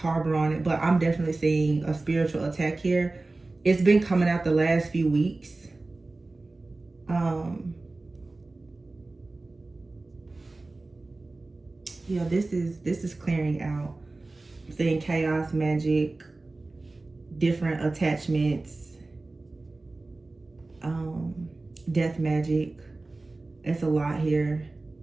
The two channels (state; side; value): quieter; left; 3.2 dB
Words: on it, but I'm definitely seeing a spiritual attack here. It's been coming out the last few weeks. Yeah, this is clearing out. I'm seeing chaos, magic, different attachments, death magic. It's a lot here.